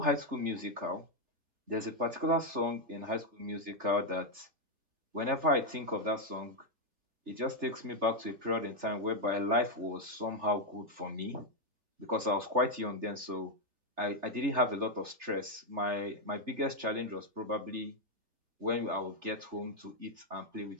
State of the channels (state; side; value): late; left; 3.3 ms